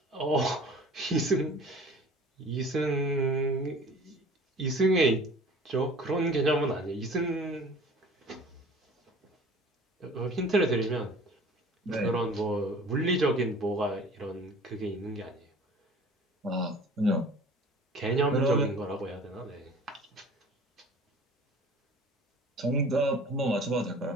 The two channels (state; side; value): normal; both; correlation 0.45